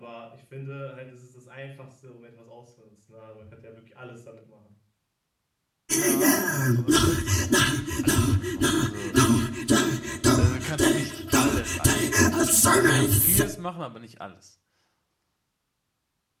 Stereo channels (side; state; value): both; identical; correlation 1.00